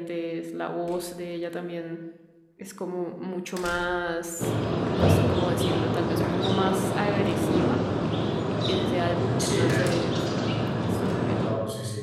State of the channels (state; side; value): identical; both; correlation 1.00